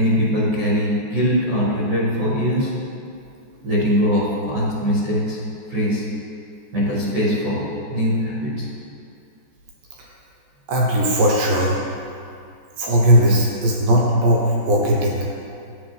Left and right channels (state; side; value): late; left; 14 ms